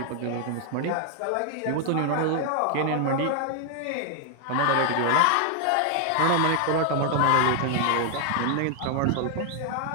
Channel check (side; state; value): both; different; correlation 0.00